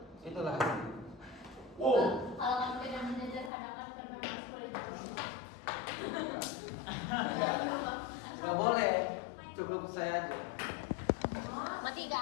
Itulah hasilnya. Wow. Kalau kamu tidak menyederhanakan kan memang sulit. Gak boleh, cukup saya aja. Mati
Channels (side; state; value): right; drops out; at 3.5 s